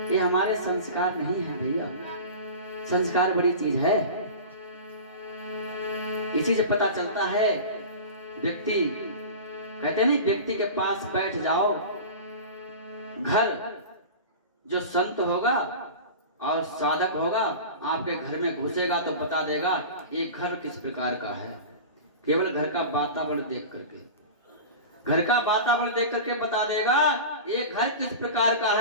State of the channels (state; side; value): inverted; both; correlation -0.32